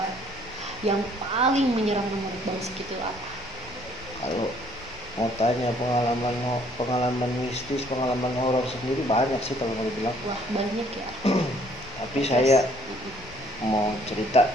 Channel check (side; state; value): left; noise; rumble, 20 dB below the sound